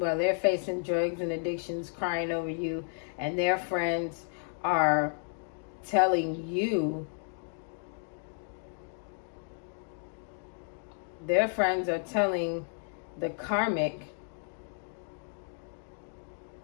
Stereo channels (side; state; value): right; silent; 56 dB below the other